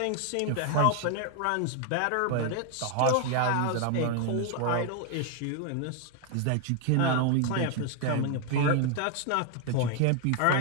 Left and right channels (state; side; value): different; both; correlation 0.00